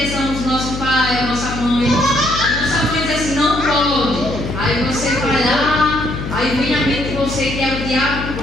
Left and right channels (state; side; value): noise; left; hum, 7 dB below the sound